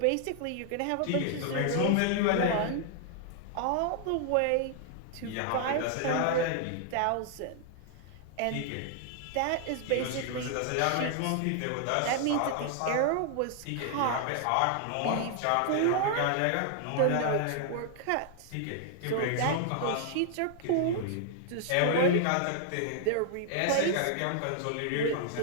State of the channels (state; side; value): different; both; correlation -0.01